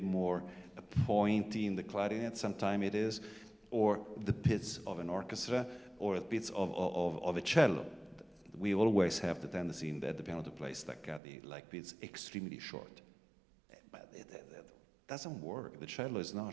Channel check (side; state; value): left; drops out; at 11.2 s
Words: more pointy in the clarinet, sometimes it is, or the pits of an orchestra, or the pits of a cello. We always have the tendency at the piano to play staccati like pits extremely short. But it doesn't work. The cello is not